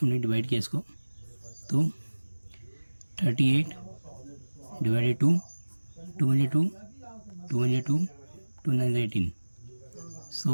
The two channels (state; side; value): inverted; both; correlation -1.00